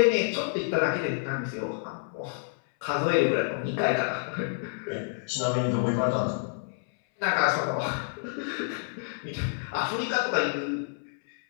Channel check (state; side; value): silent; right; 59 dB below the other